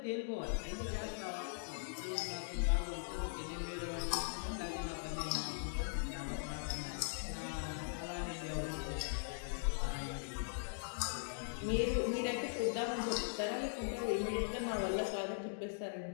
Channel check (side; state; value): right; silent; digital silence